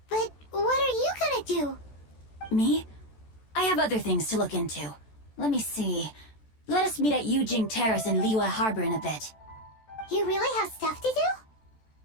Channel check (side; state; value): right; late; 14 ms